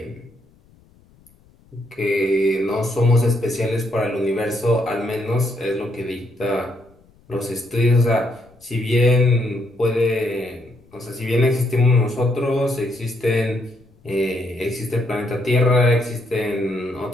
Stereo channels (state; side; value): noise; left; rumble, 30 dB below the sound